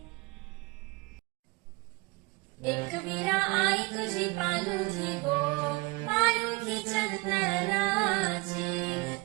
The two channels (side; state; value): left; quieter; 25.9 dB